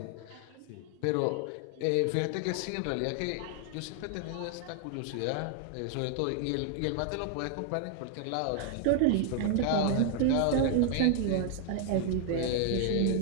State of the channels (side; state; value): both; different; correlation 0.00